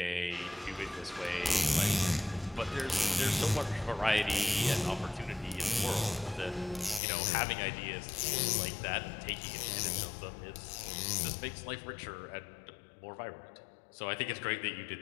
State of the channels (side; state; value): right; drops out; at 7.0 s